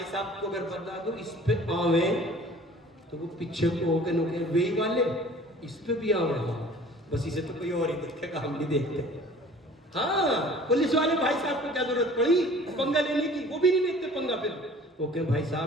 صاحب کو اگر بتا دو اس پہ آویں تو وہ پیچھے کو ہو کے نوکے وہی والے اس پہ بھی آویں. بس اسے تو کوئی اور ہی دیکھے گا، ہم نہیں دیکھتے. ہاں پولیس والے بھائی صاحب کو کیا ضرورت پڑی پنگا لینے کی؟ وہ بھی نہیں لیتے پنگا. پھر وہ کہ بھائی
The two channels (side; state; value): both; normal; correlation 0.48